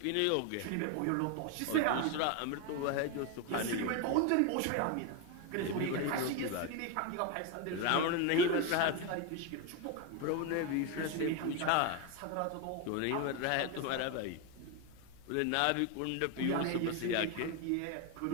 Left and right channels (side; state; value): both; different; correlation 0.02